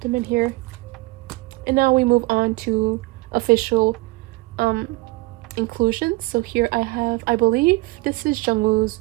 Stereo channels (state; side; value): quieter; left; 22.4 dB